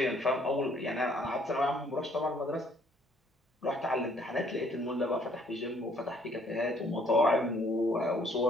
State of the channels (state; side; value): normal; both; correlation 0.63